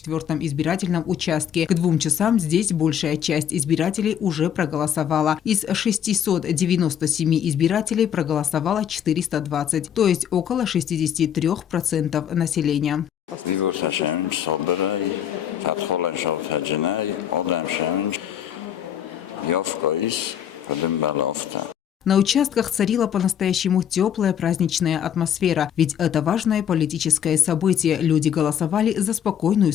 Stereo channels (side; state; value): right; quieter; 9.3 dB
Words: избирательном участке. К 2 часам здесь большая часть избирателей уже проголосовала. Из 697 избирателей проголосовало 420, то есть около 63% населения. На участках царила по-настоящему теплая праздничная атмосфера, ведь это важное политическое событие. Люди голосовали за спокойную,